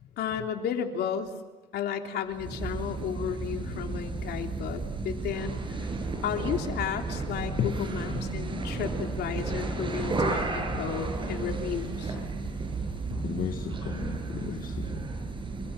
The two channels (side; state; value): both; normal; correlation 0.47